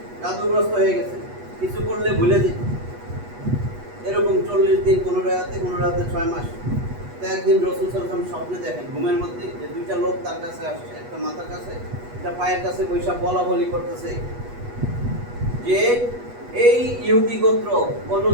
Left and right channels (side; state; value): left; late; 8.2 ms